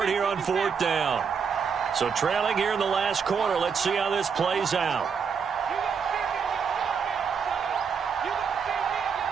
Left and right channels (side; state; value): left; quieter; 6.3 dB